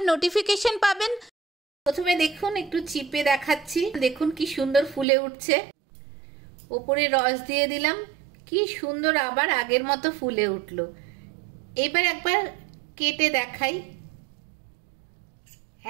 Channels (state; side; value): drops out; left; at 5.1 s